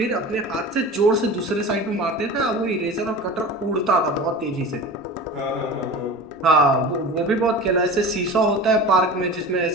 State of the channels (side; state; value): right; noise; rumble, 30 dB below the sound